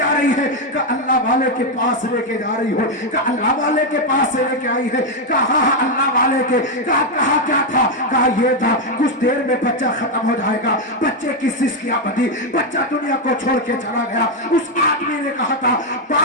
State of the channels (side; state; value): both; normal; correlation 0.03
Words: رہی ہے؟ کہ اللہ والے کے پاس لے کے جا رہی ہو، کہ اللہ والے کے پاس سے لے کے آئی ہے؟ کہا اللہ والے کے، کہا کیا تھا؟ کہا یہ تھا کچھ دیر میں بچہ ختم ہو جائے گا۔ بچے کی سسکیاں بدھی، بچہ دنیا کو چھوڑ کے چلا گیا۔ اس آدمی نے کہا تھا،